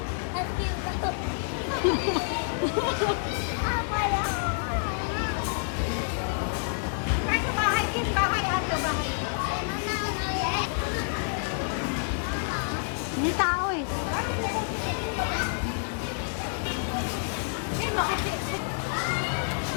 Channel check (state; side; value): silent; right; digital silence